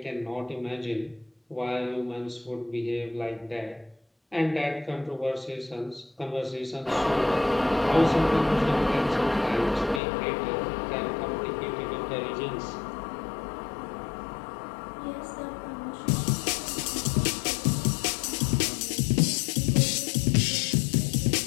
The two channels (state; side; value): drops out; right; at 10.0 s